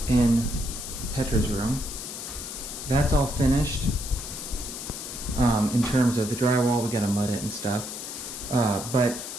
in Petra's room. That's all finished. In terms of the drywall, we gotta mud it and stuff. But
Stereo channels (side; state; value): left; noise; hiss, 8 dB below the sound